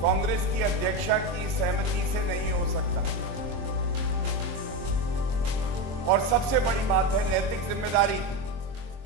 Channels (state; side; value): late; left; 23 ms